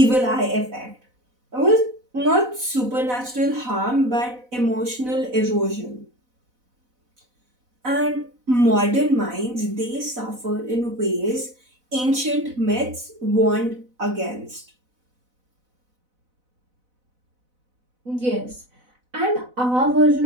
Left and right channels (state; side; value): late; left; 4.0 ms